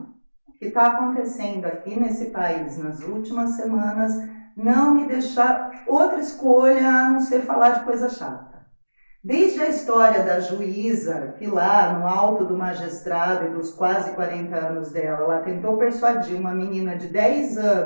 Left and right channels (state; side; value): inverted; both; correlation -1.00